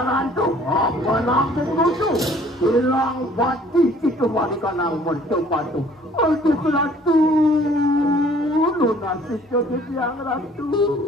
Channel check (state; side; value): normal; both; correlation 0.56